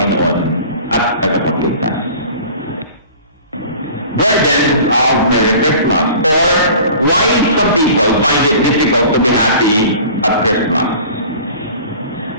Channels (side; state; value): both; inverted; correlation -0.44